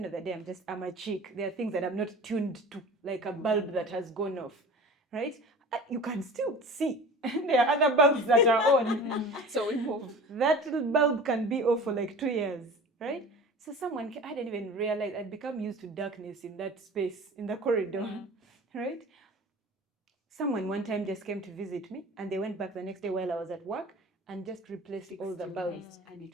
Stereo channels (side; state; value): both; normal; correlation 0.39